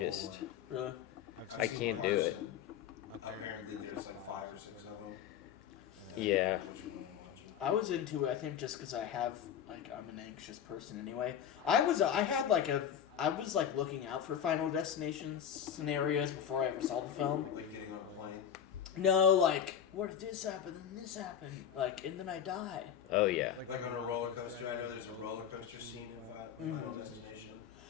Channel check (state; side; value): quieter; right; 9.0 dB